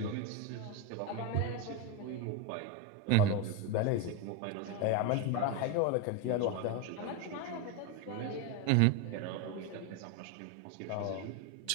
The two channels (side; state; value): both; different; correlation 0.03